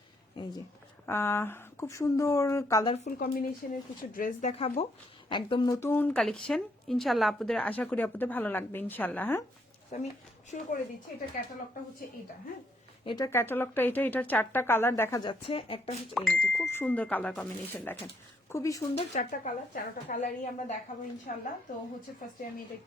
এই যে খুব সুন্দর কালারফুল কম্বিনেশনের কিছু ড্রেস দেখাবো, একদম নতুন কালেকশন। ইনশাআল্লাহ আপনাদের আশা করি আপনাদের ভালো লাগবে ইনশাআল্লাহ। হ্যাঁ, আমি শুরু করে দিচ্ছি। এটা ক্যাটালগটা হচ্ছে এটা। হ্যাঁ, এটা ক্যাটালগটা এটার 4টা কালার দেখা যাচ্ছে। একটা হচ্ছে এই যে খুব সুন্দর কালার কম্বিনেশন, দেখেন খুবই সুন্দর 4টা কালার। 4টা কালারই আমরা দেখাবো ইনশাআল্লাহ। তো হচ্ছে ফার্স্টে আমি এটা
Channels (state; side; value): normal; both; correlation 0.72